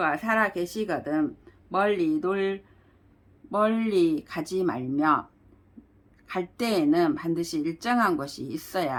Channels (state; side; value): identical; both; correlation 1.00